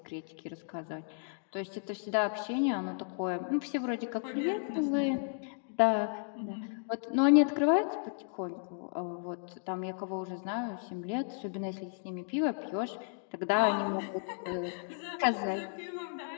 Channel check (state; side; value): silent; right; 55 dB below the other